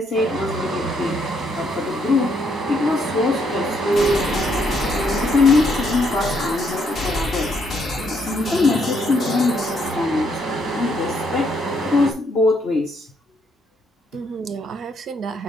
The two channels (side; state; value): both; normal; correlation 0.72